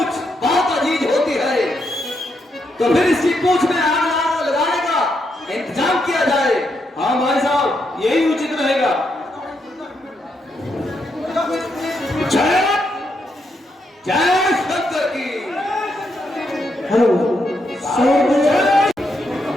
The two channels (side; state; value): both; normal; correlation 0.80